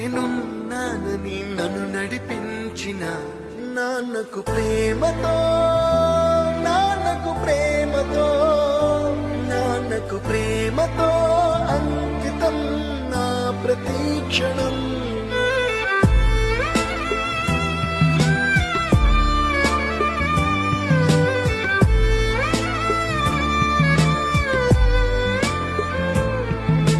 నన్ను నడిపించిన నాన్నకు ప్రేమతో, నాన్నకు ప్రేమతో, నాన్నకు ప్రేమతో అంకితం నా ప్రతి క్షణం.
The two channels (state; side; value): identical; both; correlation 1.00